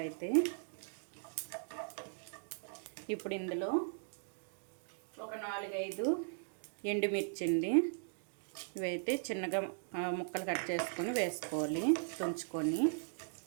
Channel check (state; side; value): silent; left; digital silence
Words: అయితే. ఇప్పుడు ఇందులో ఒక 4-5 ఎండుమిర్చి అండి, ఇవైతే చిన్నగా ముక్కలు కట్ చేసుకొని వేసుకోవాలి, తుంచుకొని.